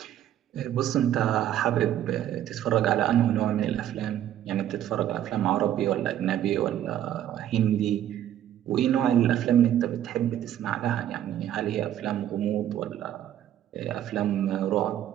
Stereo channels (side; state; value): left; quieter; 11.4 dB